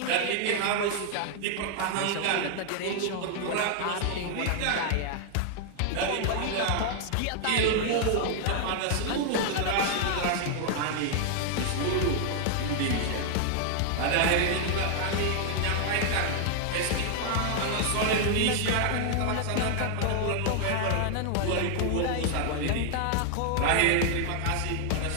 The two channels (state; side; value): different; both; correlation 0.00